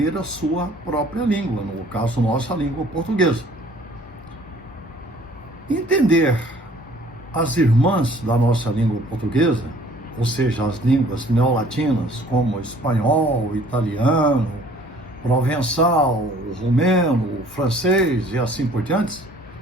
a sua própria língua, no caso, nossa língua portuguesa. Entender as irmãs da nossa língua portuguesa, ou seja, as línguas neolatinas, como espanhol, italiano, provençal, romeno, francês e assim por diante,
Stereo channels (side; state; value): both; normal; correlation 0.55